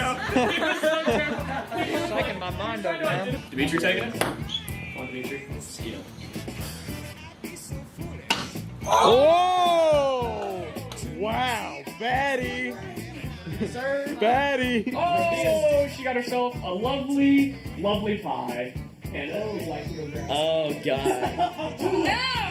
Shaking my mind up, man. Dimitri taking it? Come on, Dimitri. Steal. Oh! Wow, Batty! Sir. Batty! Oh, she got herself a lovely, lovely pie. And Oh, God. No!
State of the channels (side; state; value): both; identical; correlation 1.00